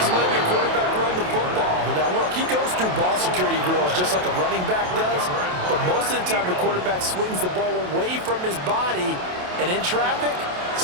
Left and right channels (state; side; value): late; left; 27 ms